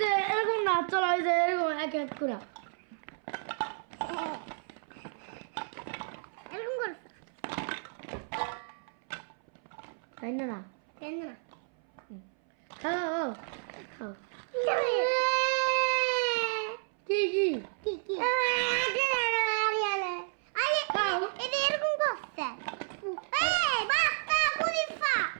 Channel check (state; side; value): silent; left; 57 dB below the other